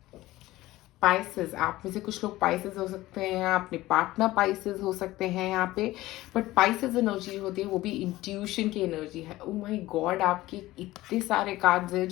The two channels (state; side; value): quieter; right; 17.3 dB